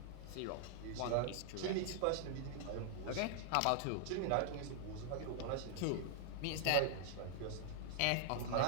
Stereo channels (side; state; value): both; different; correlation -0.01